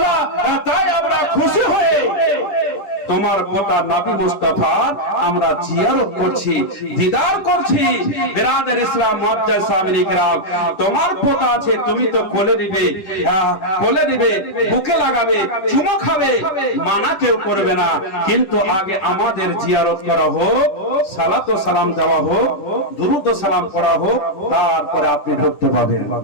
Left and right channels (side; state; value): right; late; 10 ms